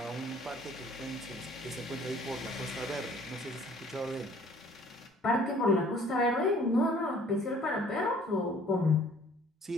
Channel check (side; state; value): both; normal; correlation 0.55